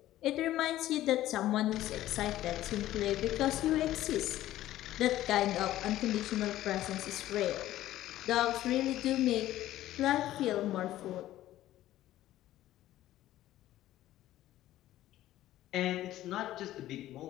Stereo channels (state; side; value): quieter; right; 14.3 dB